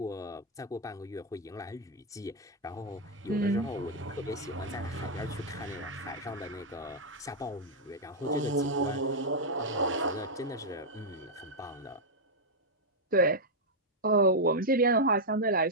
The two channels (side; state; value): both; normal; correlation -0.04